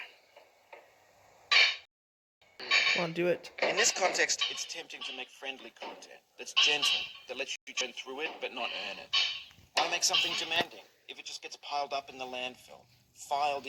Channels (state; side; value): identical; both; correlation 1.00